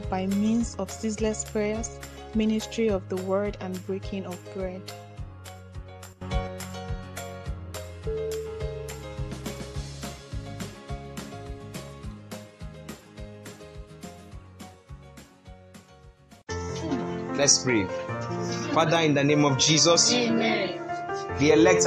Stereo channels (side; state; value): both; identical; correlation 1.00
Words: by means of ceaseless prayers, ministry of the word, and breaking of bread. Let's pray. Father, in the name of Jesus, Amen. The elect